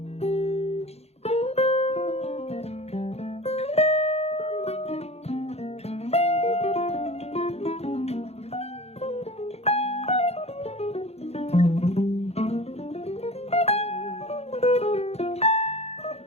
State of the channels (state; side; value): late; right; 0.30 ms